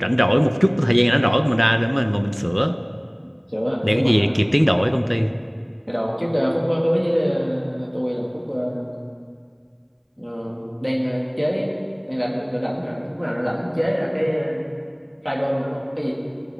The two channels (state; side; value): identical; both; correlation 1.00